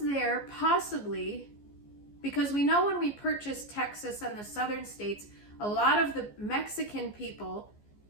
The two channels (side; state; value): right; late; 14 ms